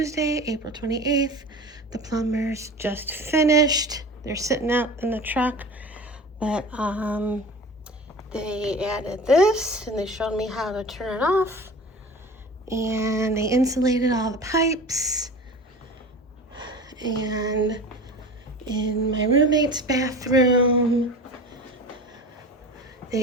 April 28th. The plumbers just finished. They're sitting out in the truck, but they added this and they showed me how to turn it off. And they insulated all the pipes. And in my roommate's bathroom,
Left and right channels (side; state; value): both; normal; correlation 0.36